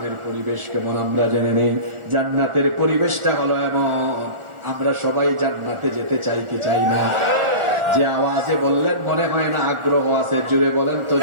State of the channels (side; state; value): left; late; 1.4 ms